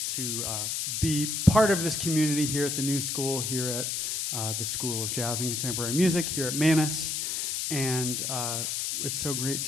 to be part of this community here at the New School, here at the School of Jazz and Contemporary Music, here at Manus. And it's so great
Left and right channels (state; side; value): noise; left; hiss, 1 dB below the sound